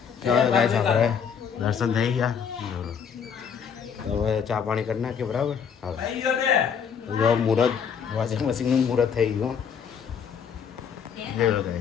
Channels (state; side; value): quieter; right; 7.1 dB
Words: ચાલો ગાઈસ, આપણે દર્શન થઈ ગયા. હવે ચા પાણી કરી નાખીએ, બરાબર? હવે મુહૂર્ત વોશિંગ મશીનનું મુહૂર્ત થઈ ગયું.